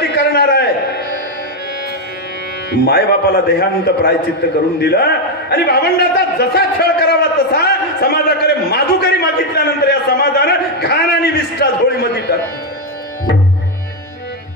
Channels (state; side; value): normal; both; correlation 0.04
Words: करणार आहे. माय बापाला देहांत प्रायचित्त करून दिलं आणि भावंडाचा जसा छळ करावा तसा समाजाकडे माधुकरी मागितल्यानंतर या समाजानं घाण आणि विष्ठा झोळीमध्ये टाकली.